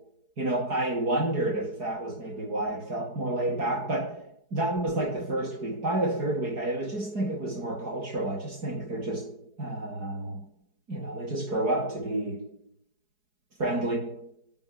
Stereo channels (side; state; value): left; late; 4.7 ms